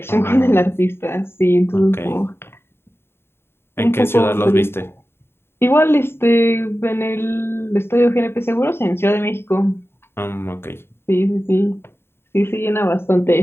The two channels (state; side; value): late; right; 0.11 ms